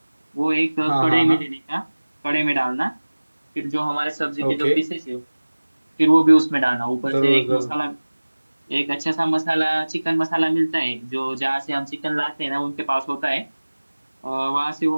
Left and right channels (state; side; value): inverted; both; correlation -1.00